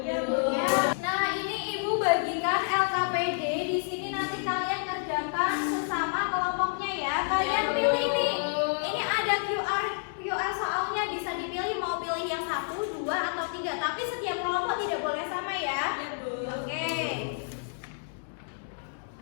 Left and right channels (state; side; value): silent; right; digital silence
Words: Bu. Ya. Nah, ini Ibu bagikan LKPD. Di sini nanti kalian kerjakan sesama kelompoknya ya. Kalian pilih nih. Ini ada QR soalnya, bisa dipilih mau pilih yang 1, 2, atau 3. Tapi setiap kelompok tidak boleh sama ya. Oke.